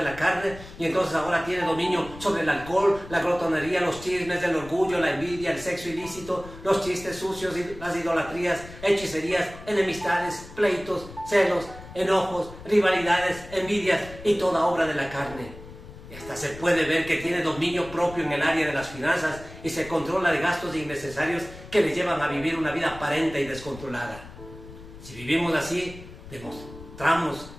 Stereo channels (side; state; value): left; noise; rumble, 16 dB below the sound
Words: la carne y entonces ahora tiene dominio sobre el alcohol, la glotonería, los chismes, el orgullo, la envidia, el sexo ilícito, los chistes sucios, las idolatrías, hechicerías, enemistades, pleitos, celos, enojos, rivalidades, envidias y toda obra de la carne. Y hasta se puede ver que tiene dominio propio en el área de las finanzas y se controla de gastos innecesarios que le llevan a vivir una vida aparente y descontrolada. Si vivimos así, demostramos